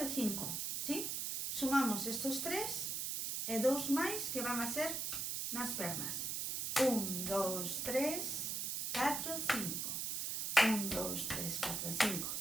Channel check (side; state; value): right; noise; hiss, 1 dB below the sound